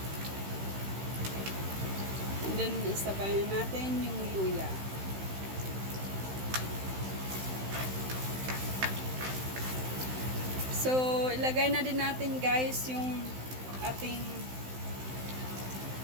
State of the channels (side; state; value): left; late; 16 ms